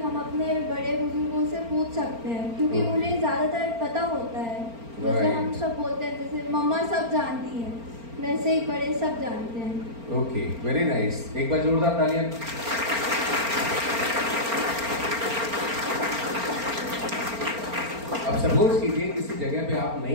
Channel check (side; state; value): left; late; 4.4 ms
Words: अपने बड़े बुजुर्गों से पूछ सकते हैं, क्योंकि उन्हें ज़्यादातर पता होता है। जैसे हम सब बोलते हैं, जैसे मम्मा सब जानती हैं, वैसे ही बड़े सब जानते हैं। Okay, very nice. एक बार जोरदार तालियां। अब सपोज कीजिए किसी जगह पे आप